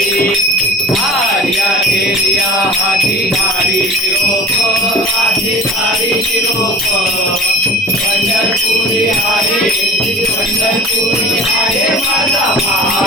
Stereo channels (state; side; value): normal; both; correlation 0.42